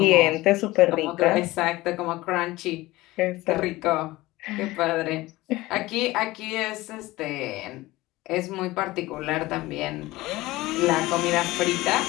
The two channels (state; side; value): quieter; right; 19.0 dB